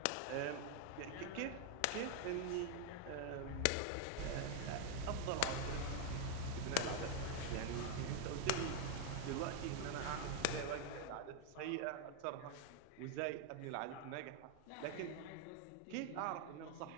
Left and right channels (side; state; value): both; different; correlation 0.00